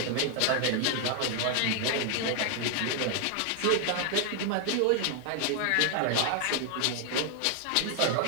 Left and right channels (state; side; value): different; both; correlation 0.00